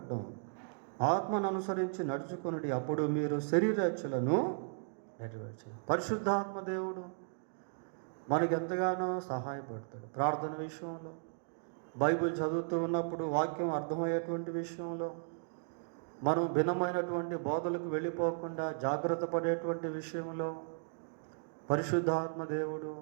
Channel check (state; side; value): silent; left; digital silence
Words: ఆత్మను అనుసరించి నడుచుకుని అప్పుడు మీరు శరీరేచ్ఛలను నెరవేర్చరు. పరిశుద్ధాత్మ దేవుడు మనకి ఎంతగానో సహాయపడతాడు. ప్రార్థన విషయంలో, బైబిల్ చదువుతూ ఉన్నప్పుడు వాక్యం అర్థమయ్యేటువంటి విషయంలో, మనం భిన్నమైనటువంటి బోధలకు వెళ్ళిపోకుండా జాగ్రత్త పడేటువంటి విషయంలో పరిశుద్ధాత్మ దేవుడు